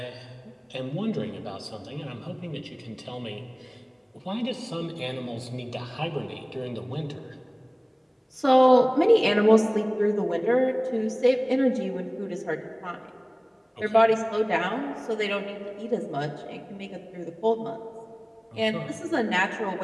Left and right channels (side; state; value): both; identical; correlation 1.00